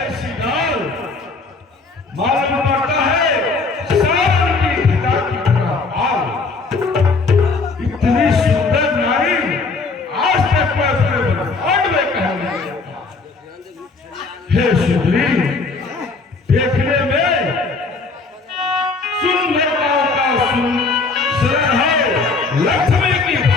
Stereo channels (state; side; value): quieter; right; 4.1 dB